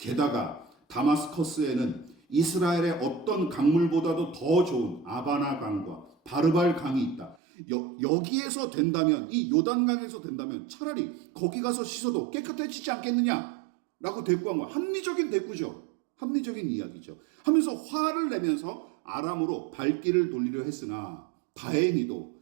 다마스커스에는 이스라엘의 어떤 강물보다도 더 좋은 아바나 강과 바르발 강이 있다. 여기에서 된다면, 이 요단강에서 된다면 차라리 거기 가서 씻어도 깨끗해지지 않겠느냐 라고 대꾸한 거야. 합리적인 대꾸죠. 합리적인 이야기죠. 하면서 화를 내면서 아람으로 발길을 돌리려 했으나 다행히도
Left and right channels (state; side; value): drops out; left; at 7.4 s